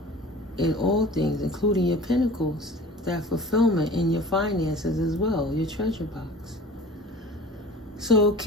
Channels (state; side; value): normal; both; correlation 0.43